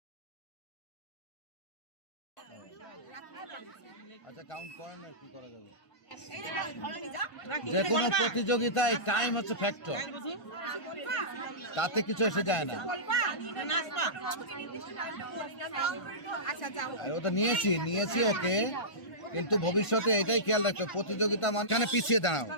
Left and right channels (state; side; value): late; right; 1.5 ms